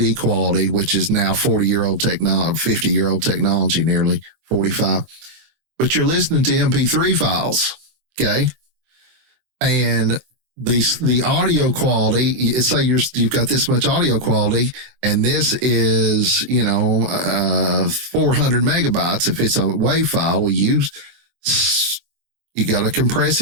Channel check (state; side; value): late; left; 23 ms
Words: quality, which is now 50-year-old technology, nearly 45. But you're listening to MP3 files, okay? And the audio quality, say you've got this much audio quality, and this is 400 megabytes. If it's a WAV file, you got to compress